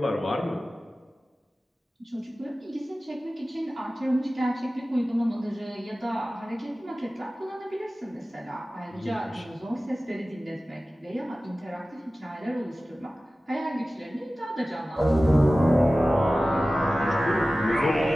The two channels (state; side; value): normal; both; correlation 0.96